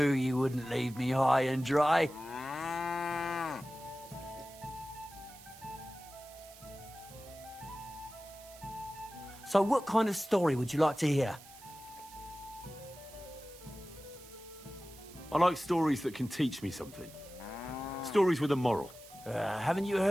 you wouldn't leave me high and dry. So what kind of story would you like to hear? I like stories that can teach me something. Stories with a moral. Haven't you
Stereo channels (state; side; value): noise; right; hiss, 20 dB below the sound